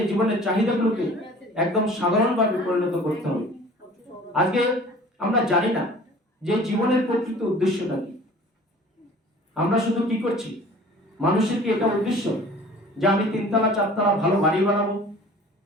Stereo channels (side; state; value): both; normal; correlation 0.46